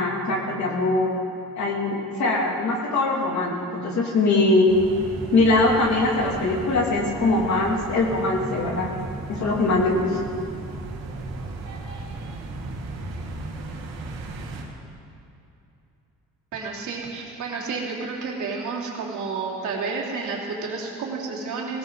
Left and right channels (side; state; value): both; normal; correlation 0.32